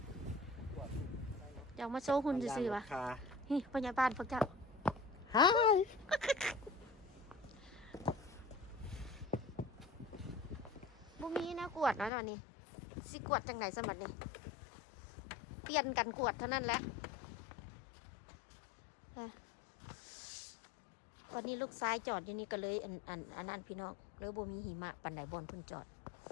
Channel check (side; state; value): right; drops out; at 12.1 s